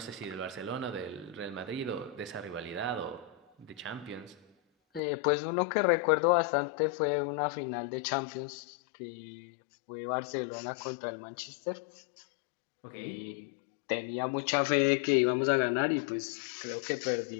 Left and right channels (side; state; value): right; drops out; at 5.0 s